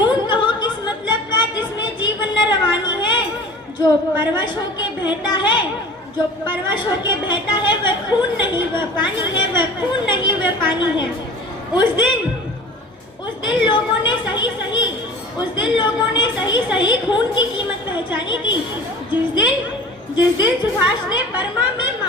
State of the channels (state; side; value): normal; both; correlation 0.41